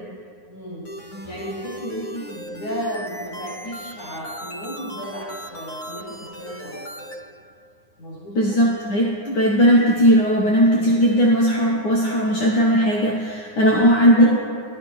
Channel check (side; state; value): right; late; 9.7 ms